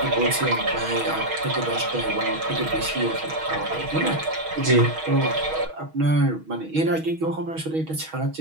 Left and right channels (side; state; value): left; late; 6.3 ms